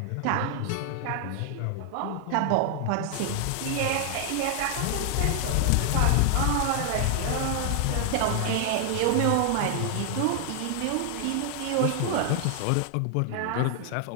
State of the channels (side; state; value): both; different; correlation 0.00